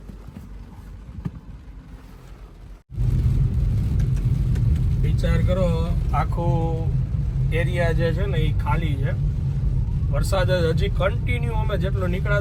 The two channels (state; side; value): identical; both; correlation 1.00